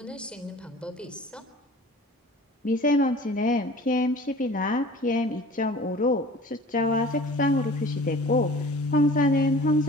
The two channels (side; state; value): both; normal; correlation 0.44